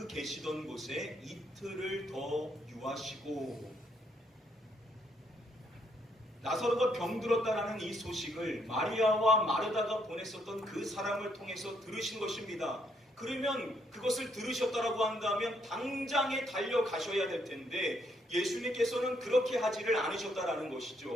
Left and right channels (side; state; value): both; normal; correlation 0.73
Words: 계시던 곳에 이틀을 더 유하시고, 나사로가 병들었다라는 이 소식을 마리아와 마르다가 보냈었던 그 사람을 통해서 들으신 것입니다. 그러면 그것을 들으셨다라고 한다면 당장에 달려가셔야 될 텐데 예수님께서는 그렇게 하지를 않으셨다라는